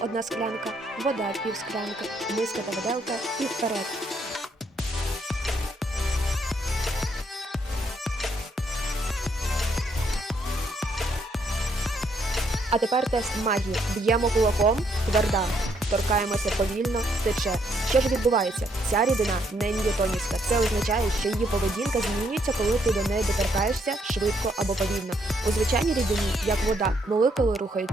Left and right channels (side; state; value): both; normal; correlation 0.72